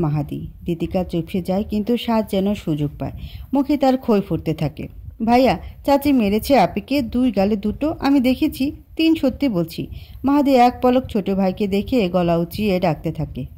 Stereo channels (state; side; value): identical; both; correlation 1.00